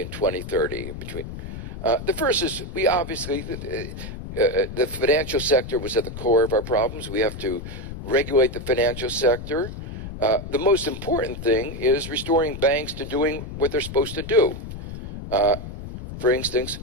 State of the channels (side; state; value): left; noise; rumble, 9 dB below the sound